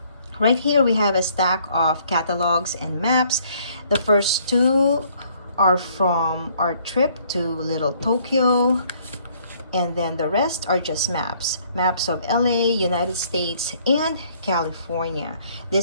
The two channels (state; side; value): inverted; both; correlation -0.63